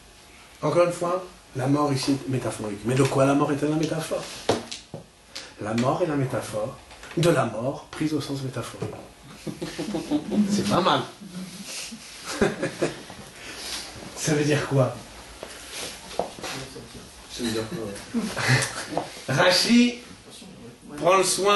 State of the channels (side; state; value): both; identical; correlation 1.00